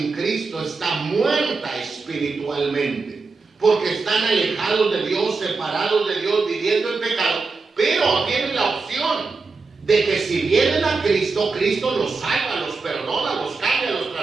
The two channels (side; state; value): left; quieter; 4.2 dB